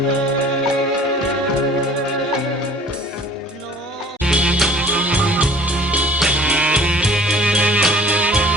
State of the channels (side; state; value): both; normal; correlation 0.50